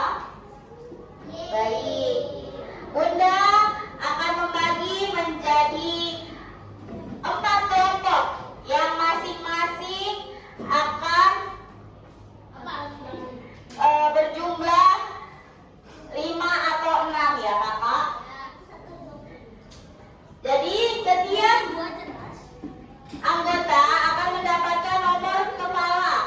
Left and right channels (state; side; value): identical; both; correlation 1.00